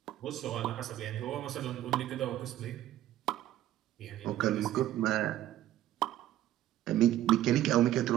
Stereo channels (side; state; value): left; quieter; 13.3 dB